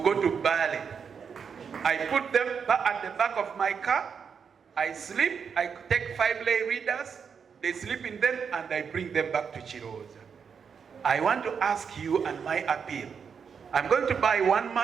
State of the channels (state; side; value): quieter; left; 6.5 dB